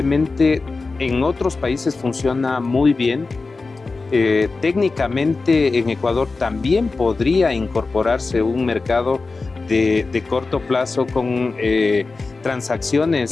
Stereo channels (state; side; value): quieter; right; 3.9 dB